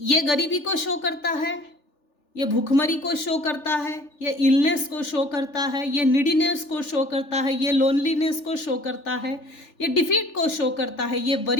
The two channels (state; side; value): late; right; 3.4 ms